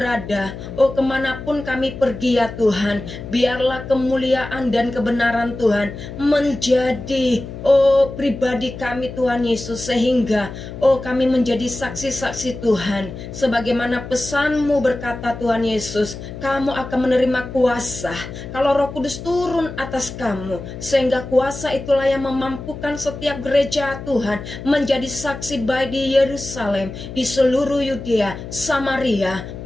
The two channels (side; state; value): left; noise; hum, 11 dB below the sound